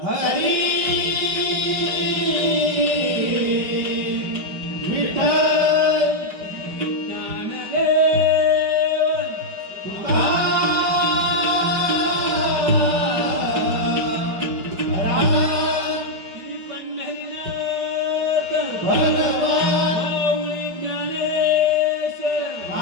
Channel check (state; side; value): late; left; 5.2 ms